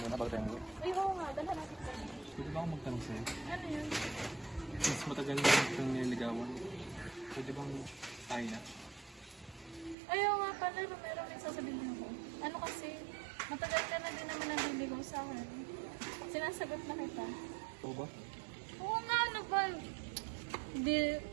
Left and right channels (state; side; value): drops out; left; at 10.0 s